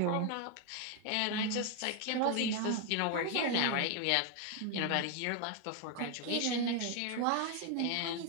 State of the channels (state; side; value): different; both; correlation 0.01